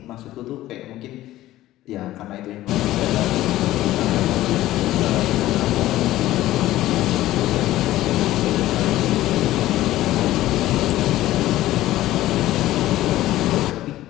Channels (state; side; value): quieter; right; 15.2 dB